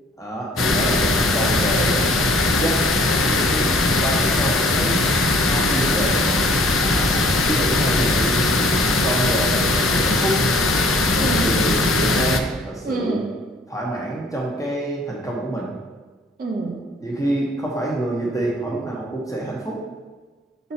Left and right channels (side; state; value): both; normal; correlation 0.56